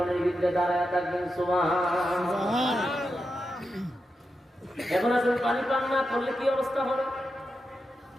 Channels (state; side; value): normal; both; correlation 0.88